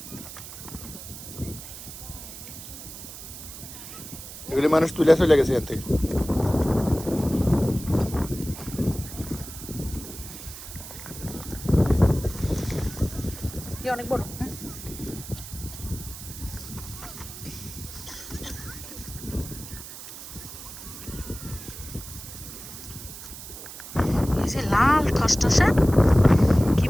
এগুলি মানুষ তুলে চলে গেছে এখান থেকে অনেক বড় এই যে লাল টসটসা কি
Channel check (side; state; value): right; noise; hiss, 12 dB below the sound